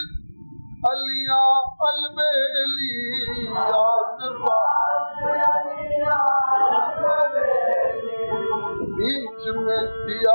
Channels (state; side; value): inverted; both; correlation -1.00